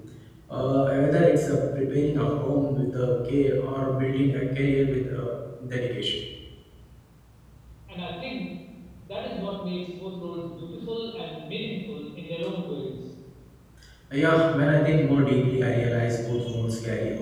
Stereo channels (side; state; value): both; identical; correlation 1.00